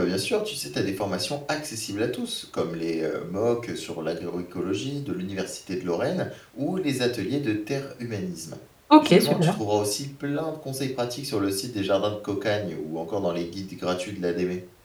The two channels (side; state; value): both; identical; correlation 1.00